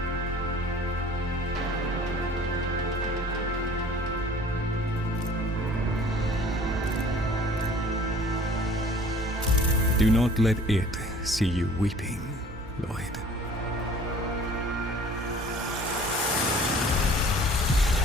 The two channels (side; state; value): both; normal; correlation 0.50